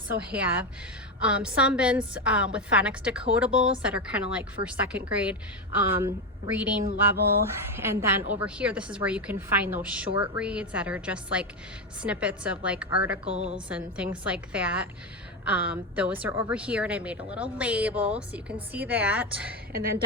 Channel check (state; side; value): normal; both; correlation 0.11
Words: have some bins with phonics decodables that are kind of like for 2nd grade reading level. And then over here, this is where you can find those short reads that are just like snippets of like articles and things like that. Those are over here, and I made a little label so you can see that. And then